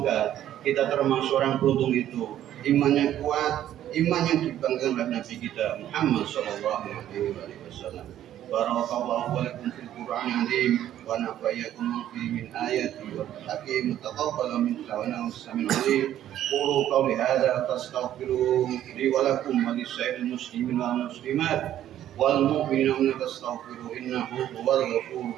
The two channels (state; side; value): quieter; left; 11.8 dB